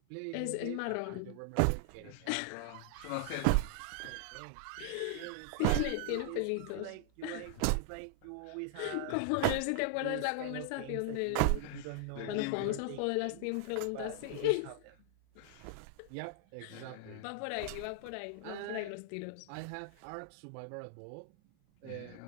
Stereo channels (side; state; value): both; different; correlation -0.01